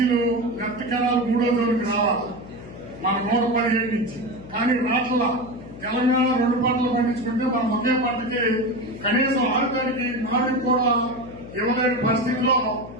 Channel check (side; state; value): left; noise; hum, 16 dB below the sound